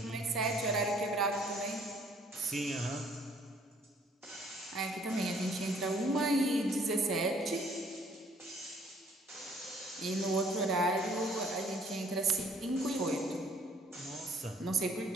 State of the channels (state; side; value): normal; both; correlation 0.61